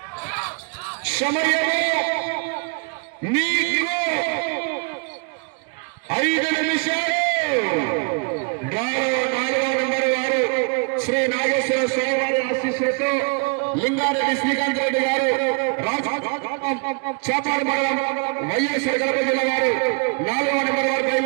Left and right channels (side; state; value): left; quieter; 34.2 dB